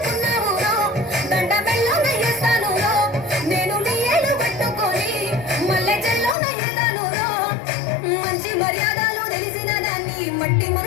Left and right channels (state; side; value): drops out; right; at 6.4 s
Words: రో, దండ బెల్లోన వేస్తాను రో, నేను నీ ఏలు పట్టుకొని మల్లె చెల్లోన వేస్తాను రో. మంచి మర్యాదలు తెలిసిన దాన్ని, మట్టి